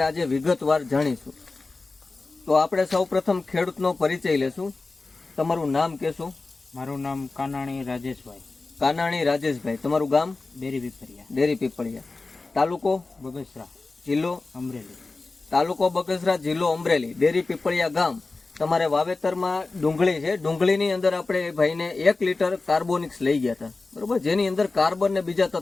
આજે વિગતવાર જાણીશું. તો આપણે સૌપ્રથમ ખેડૂતનો પરિચય લેશું. તમારું નામ કહેશો? મારું નામ કાનાણી રાજેશભાઈ. કાનાણી રાજેશભાઈ. તમારું ગામ? ડેરી પીપળિયા. તાલુકો? બગસરા. જિલ્લો? અમરેલી. તાલુકો બગસરા, જિલ્લો અમરેલી, ડેરી પીપળિયા ગામ. તમારે વાવેતરમાં ડુંગળી છે. ડુંગળીની અંદર આપણે એ ભાઈને 1 લીટર કાર્બોનિક્સ લઈ ગયા હતા, બરોબર, જેની અંદર કાર્બન ને બીજા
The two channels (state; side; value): quieter; right; 3.6 dB